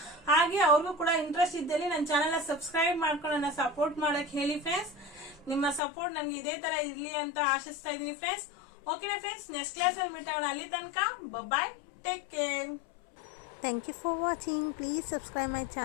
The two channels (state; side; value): drops out; right; at 5.8 s